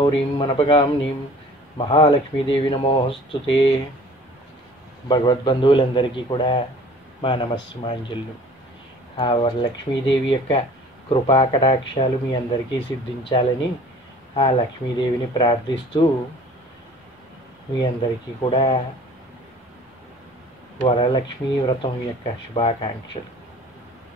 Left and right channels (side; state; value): both; normal; correlation 0.48